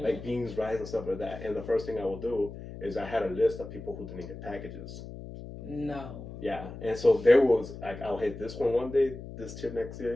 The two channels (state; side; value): noise; left; hum, 12 dB below the sound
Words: beans, rice, and stuff like that. And the first thing I will do is I had a list of people who didn't get packages. No. Yeah, and so there was like I'll hit this one day, this tip next